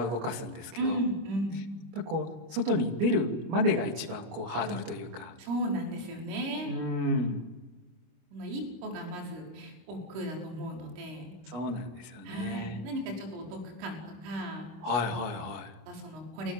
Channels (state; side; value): late; left; 25 ms